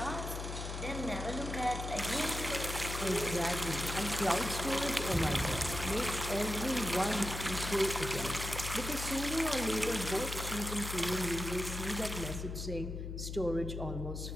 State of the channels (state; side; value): noise; left; hum, 5 dB below the sound